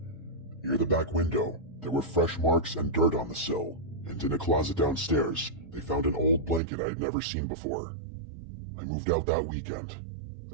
Near the back window, there were fresh marks and dirt on the sill, and in a closet downstairs, they found an old blanket I had never seen before. I moved out that weekend.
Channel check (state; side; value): drops out; left; at 6.6 s